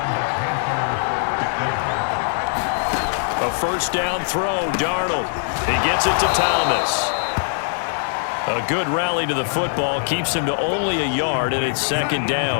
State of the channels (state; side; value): silent; right; digital silence